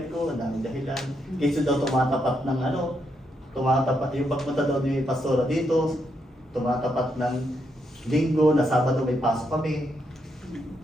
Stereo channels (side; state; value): both; normal; correlation 0.79